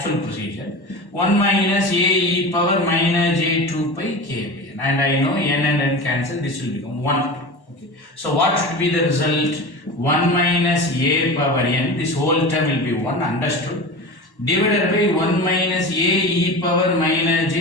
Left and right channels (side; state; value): right; late; 1.1 ms